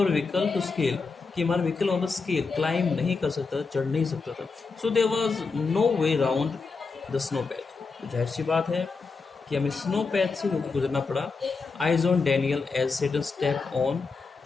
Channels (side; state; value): right; quieter; 4.5 dB